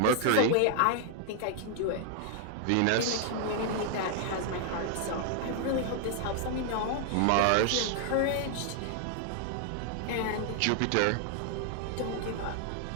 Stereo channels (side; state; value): both; different; correlation 0.00